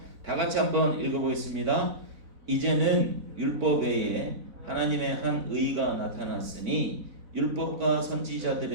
다 같이 한번 읽어보겠습니다. 이제는 율법 외에 하나님의 한 의가 나타났으니 율법과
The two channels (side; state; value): left; late; 4.0 ms